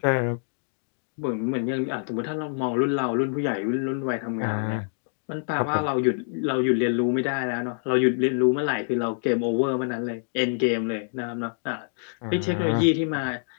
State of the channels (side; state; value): right; silent; digital silence